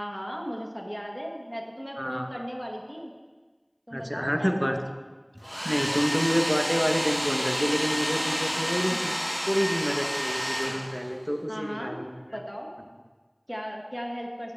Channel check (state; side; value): identical; both; correlation 1.00